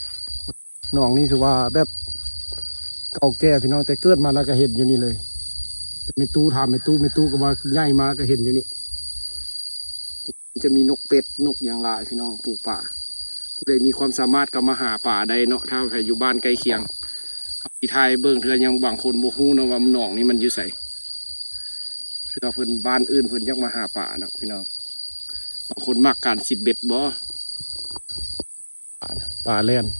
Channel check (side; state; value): both; inverted; correlation -1.00